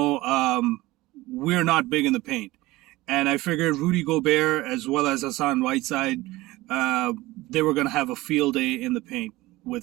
we're not big in the paint. And I figured Rudy Gobert as well as Hassan Whiteside, they were going to have a field day in the paint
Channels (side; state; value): left; quieter; 19.2 dB